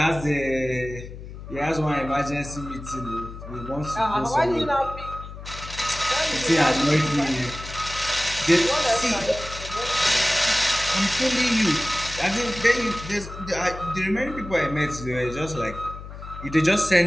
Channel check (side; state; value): left; noise; hum, 12 dB below the sound